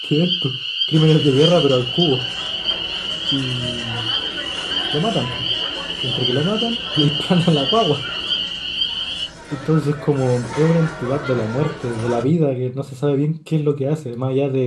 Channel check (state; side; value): identical; both; correlation 1.00